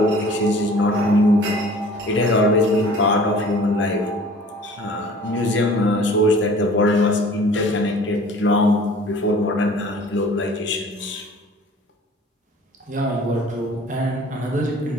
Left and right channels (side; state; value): both; normal; correlation 0.48